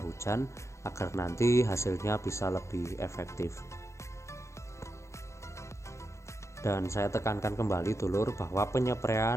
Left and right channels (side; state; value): right; late; 0.14 ms